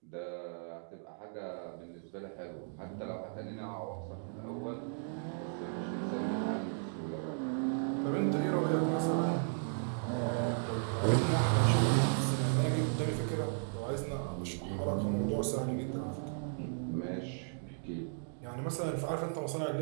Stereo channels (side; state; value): left; silent; digital silence